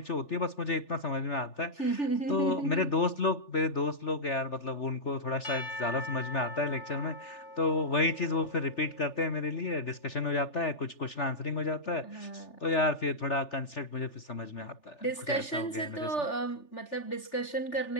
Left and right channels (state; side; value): late; right; 3.4 ms